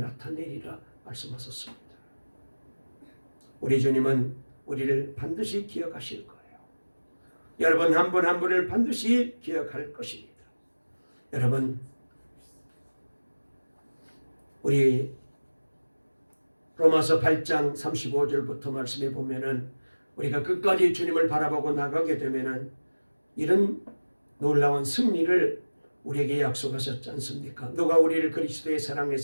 말씀하셨습니다. 우리 주님은 우리를 반드시 기억하실 거예요. 여러분 한 분 한 분을 반드시 기억할 것입니다. 여러분, 우리 로마서 8장 35절부터 말씀해 보면은 우리가 끝까지 주님을 바라보고 나가게 되면은 이런 놀라운 승리를 우리에게 약속하셨지 않습니까? 누가 우리를 그리스도의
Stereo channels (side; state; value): both; inverted; correlation -1.00